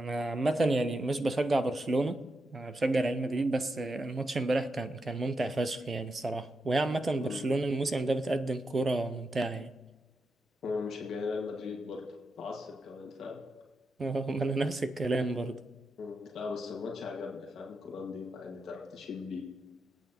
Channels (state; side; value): normal; both; correlation 0.86